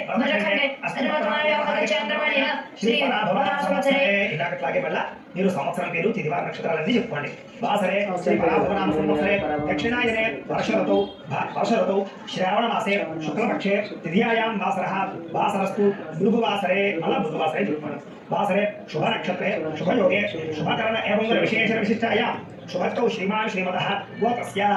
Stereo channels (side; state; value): both; identical; correlation 1.00